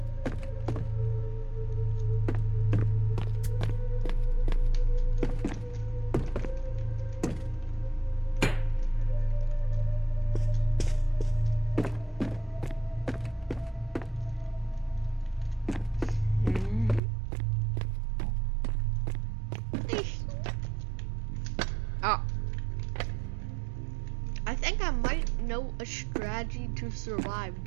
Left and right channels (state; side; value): drops out; left; at 17.0 s